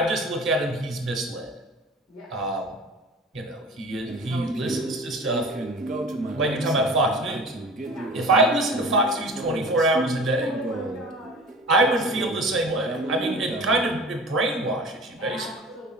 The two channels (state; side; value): normal; both; correlation 0.40